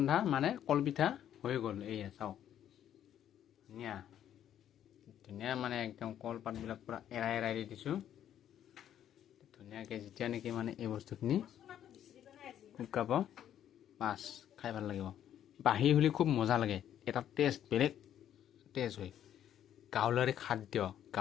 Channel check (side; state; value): right; quieter; 10.5 dB